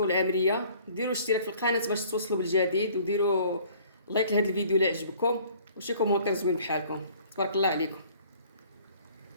العامريه ديروا اشتراك في القناه باش توصلوا بالجديد، وديروا لايك لهذا الفيديو اللي عجبكم، وشي كومونتير زوين بحالكم. تبارك الله عليكم.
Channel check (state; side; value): inverted; both; correlation -0.55